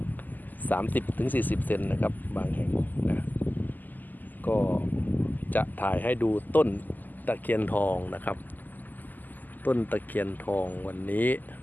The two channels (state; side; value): late; right; 0.085 ms